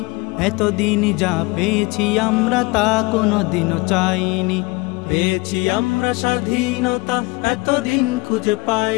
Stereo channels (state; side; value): quieter; right; 24.5 dB